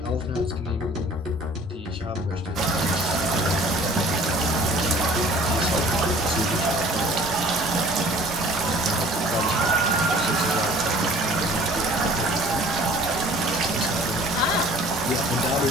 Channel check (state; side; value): normal; both; correlation 0.50